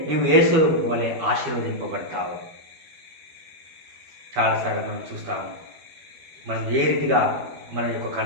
నువ్వు యేసు వలె ఆశీర్వదింపబడతావు. చాలాసార్లు మనం చూస్తాము, మనం ఏ రీతిగా మన యొక్క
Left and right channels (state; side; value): late; left; 12 ms